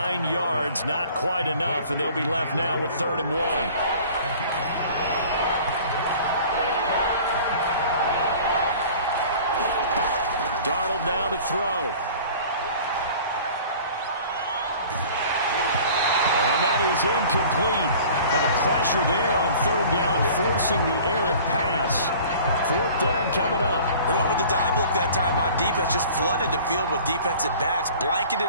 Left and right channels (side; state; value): both; inverted; correlation -0.46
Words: yards, not quite enough, and they'll be left now with 3rd and 1. Darnold now to throw. And that is incomplete. But the pressure there on 3rd down, forcing the errant pass. 4th down coming up. They went with the dime look that time on defense, just flooded the field with defensive backs,